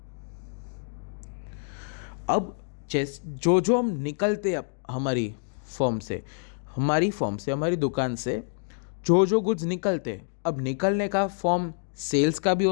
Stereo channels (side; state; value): right; silent; digital silence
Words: अब जो हम निकलते हैं हमारी फॉर्म से हमारी दुकान से जो गुड्स निकलते हैं, अब निकलने का फॉर्म सेल्स का भी